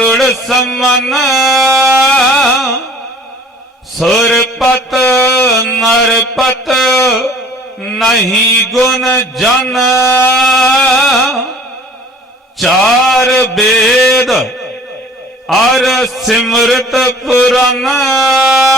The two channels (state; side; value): normal; both; correlation 0.51